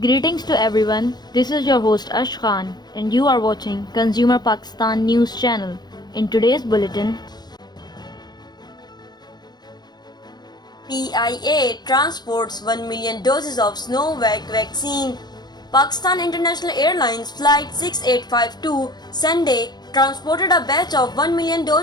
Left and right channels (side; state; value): right; late; 0.20 ms